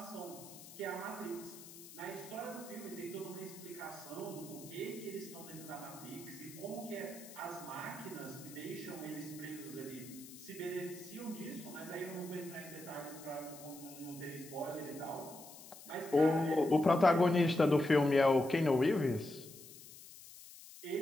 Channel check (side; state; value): left; noise; hiss, 16 dB below the sound